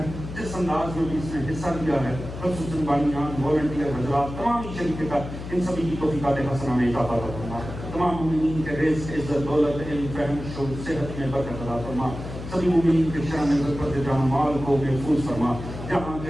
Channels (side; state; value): left; noise; hum, 9 dB below the sound